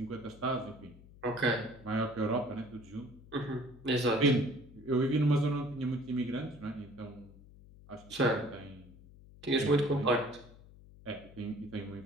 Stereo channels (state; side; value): noise; left; hum, 21 dB below the sound